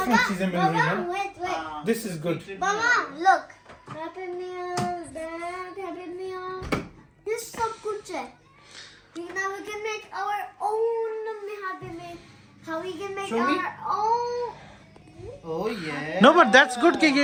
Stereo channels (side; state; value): both; identical; correlation 1.00